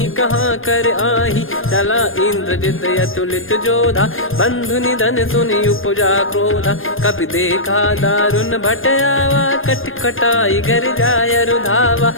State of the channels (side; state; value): right; late; 0.59 ms